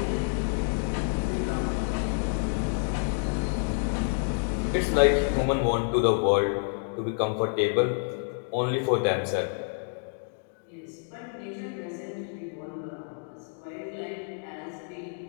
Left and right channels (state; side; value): silent; right; 59 dB below the other